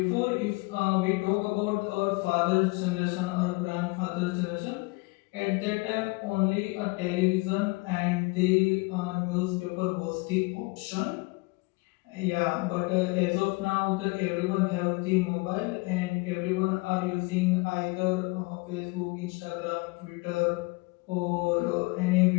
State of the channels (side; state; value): right; quieter; 26.3 dB